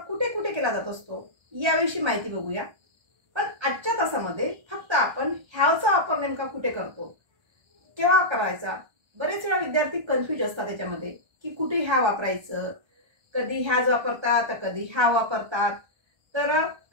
कुठे कुठे केला जात असतो याविषयी माहिती बघूया. पण आजच्या तासामध्ये फक्त आपण have चा वापर नेमका कुठे करतो, केव्हा करायचा. बरेच वेळा विद्यार्थी कन्फ्यूज असतात त्याच्यामध्ये की कुठे have वापरायचं. कधी has वापरतात तर कधी have वापरतात, तर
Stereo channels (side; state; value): left; late; 1.3 ms